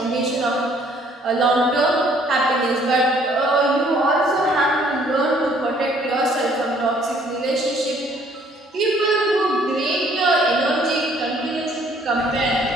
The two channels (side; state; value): both; normal; correlation 0.61